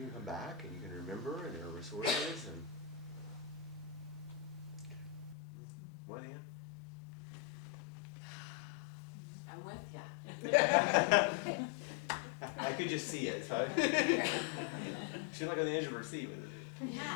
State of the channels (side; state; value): right; drops out; at 5.4 s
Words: can come back and you can remember, and there are resources. And what, Ann? I'm with ya. I could just see it. So she's like on the edge of her seat with it.